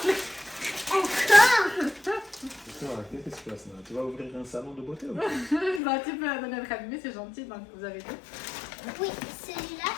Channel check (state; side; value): drops out; right; at 5.8 s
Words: Encore. Qu'est-ce qui se passe là? Tu vas ouvrir un salon de beauté ou Bah, tu peux donner le cabinet, c'est gentil, donc vous avez dit. Oui, celui-là,